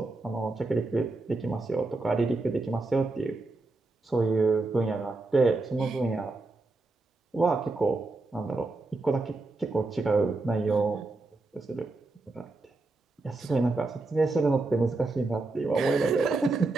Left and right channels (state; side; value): quieter; left; 3.3 dB